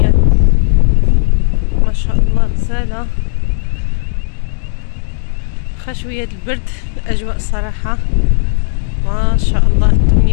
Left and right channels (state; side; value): silent; right; digital silence